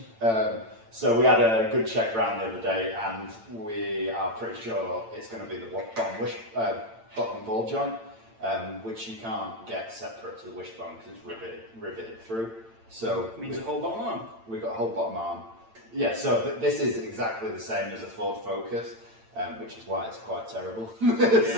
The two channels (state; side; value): late; left; 8.9 ms